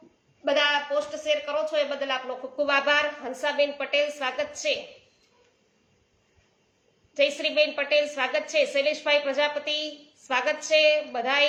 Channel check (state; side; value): identical; both; correlation 1.00